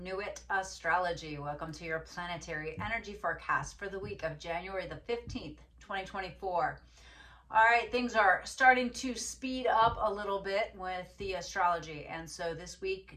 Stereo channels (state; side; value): identical; both; correlation 1.00